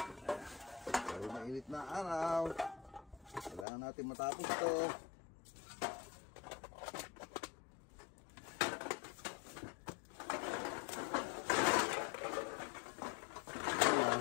Dahil mainit na araw, kailangan natin matapos ito.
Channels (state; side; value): drops out; right; at 3.7 s